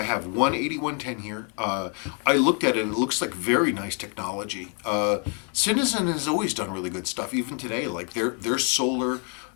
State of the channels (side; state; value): right; quieter; 39.3 dB